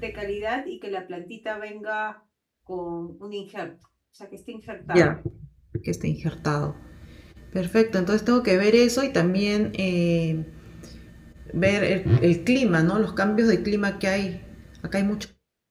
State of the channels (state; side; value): identical; both; correlation 1.00